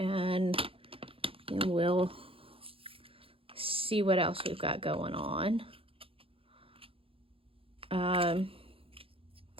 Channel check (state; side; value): late; left; 0.27 ms